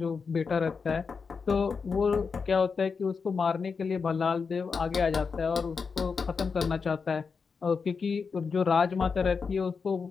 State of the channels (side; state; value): right; quieter; 5.3 dB